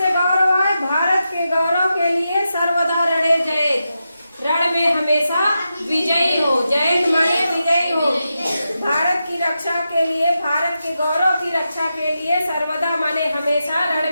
गौरव है, भारत के गौरव के लिए सर्वदा रणे जयेत, रण में हमेशा विजयी हो। जयेत माने विजयी हो। भारत की रक्षा के लिए, भारत के गौरव की रक्षा के लिए सर्वदा माने हमेशा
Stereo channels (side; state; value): both; inverted; correlation -0.89